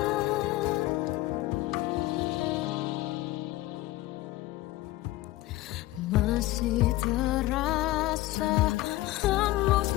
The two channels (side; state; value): right; quieter; 17.4 dB